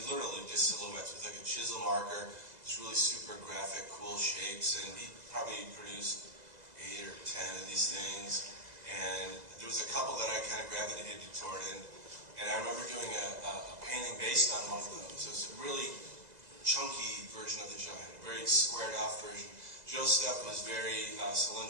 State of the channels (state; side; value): late; left; 2.0 ms